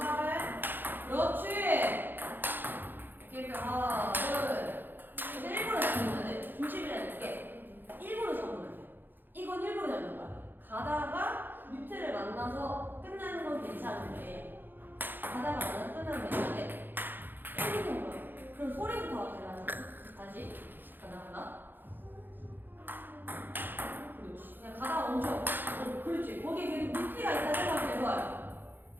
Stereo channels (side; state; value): left; late; 0.094 ms